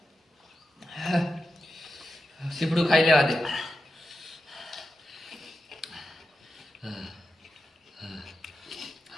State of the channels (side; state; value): both; normal; correlation 0.90